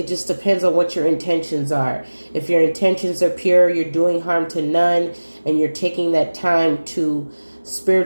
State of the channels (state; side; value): inverted; both; correlation -1.00